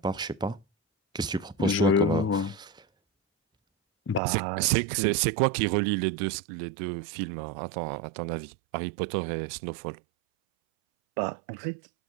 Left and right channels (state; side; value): drops out; left; at 4.2 s